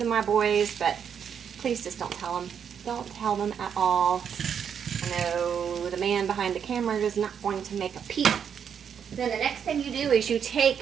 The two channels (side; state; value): left; quieter; 7.7 dB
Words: my boys, but please just don't tell them. Don't tell them at all. I know the man behind the camera is not going to make a peep. Then the next thing you do is you